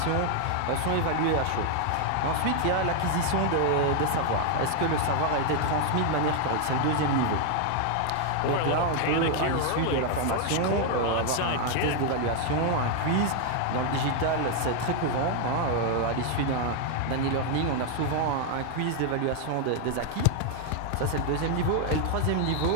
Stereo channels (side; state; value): both; different; correlation 0.00